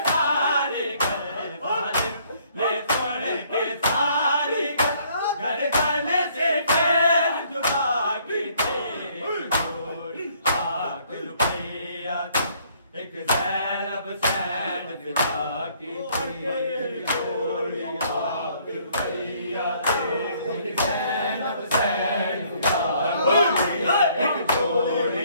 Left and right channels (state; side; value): inverted; both; correlation -0.63